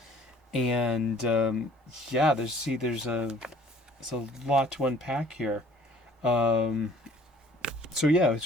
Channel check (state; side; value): normal; both; correlation 0.53